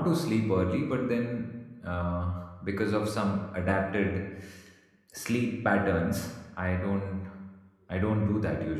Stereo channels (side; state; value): both; identical; correlation 1.00